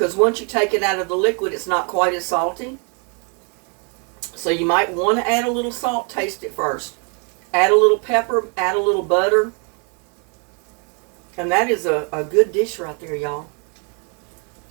once you take it out of the liquid, it's not quite as salty. So you might want to add a little salt, taste it first. Add a little pepper, add a little butter. And that is a good dish right there, y'all.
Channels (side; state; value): left; quieter; 37.7 dB